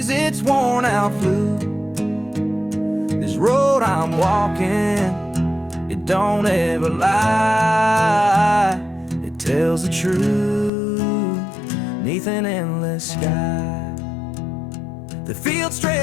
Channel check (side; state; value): right; drops out; at 10.7 s